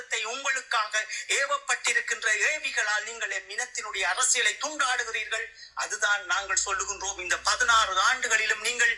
உங்களுக்காக ஏவப்பட்டிருக்கின்ற ஏவிகளால் நீங்கள் என் இனத்தினுடைய அரசியலை துண்டாடுகிறீர்கள். அதுதான் நாங்கள் சொல்லுகின்றோம். இந்த 16 ஆண்டுகளிலும் நீங்கள்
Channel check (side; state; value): both; identical; correlation 1.00